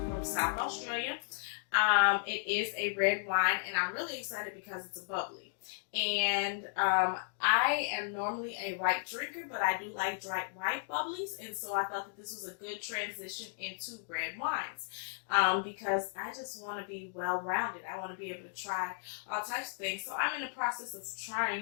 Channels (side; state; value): right; silent; digital silence